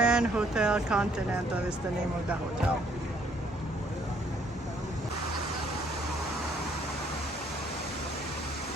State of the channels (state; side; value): normal; both; correlation 0.65